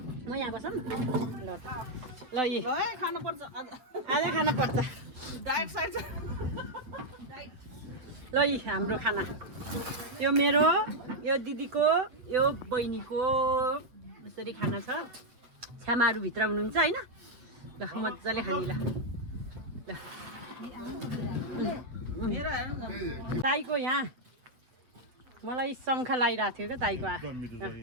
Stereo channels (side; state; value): left; late; 7.9 ms